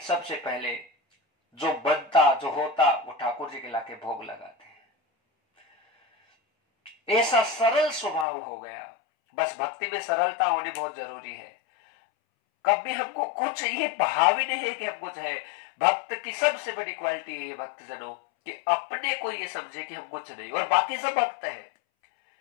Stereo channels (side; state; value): right; drops out; at 8.2 s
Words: सबसे पहले जो बनता जो होता वो ठाकुर जी के लाके भोग लगाते हैं। ऐसा सरल स्वभाव हो गया। बस भक्ति में सरलता होनी बहुत जरूरी है। कभी हमको कुछ ये भाव ही नहीं है कि हम कुछ है। भक्त की सबसे बड़ी क्वालिटी है ये भक्तजनों कि अपने को ये समझे कि हम कुछ नहीं और बाकी सब भक्त है।